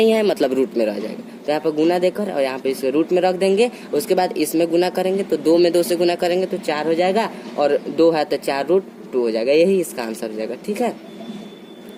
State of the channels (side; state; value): both; identical; correlation 1.00